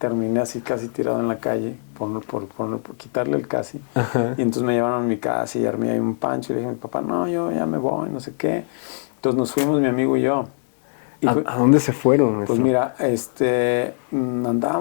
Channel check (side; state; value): right; silent; digital silence